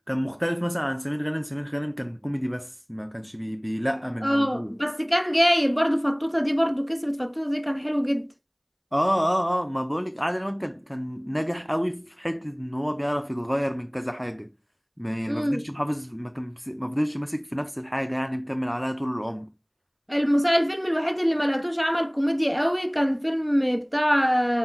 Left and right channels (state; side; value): identical; both; correlation 1.00